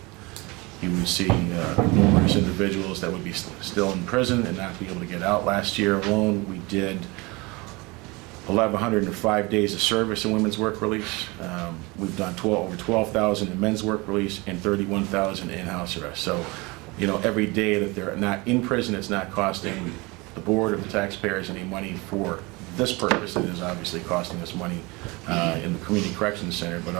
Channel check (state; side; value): quieter; left; 25.1 dB